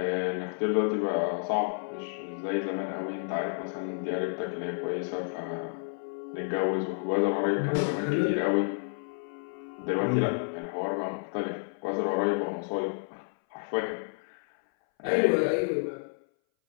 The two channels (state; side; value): silent; right; 58 dB below the other